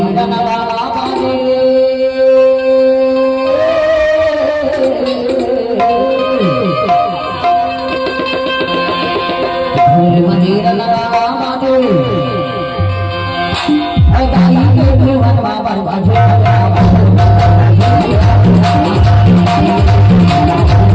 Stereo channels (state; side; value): identical; both; correlation 1.00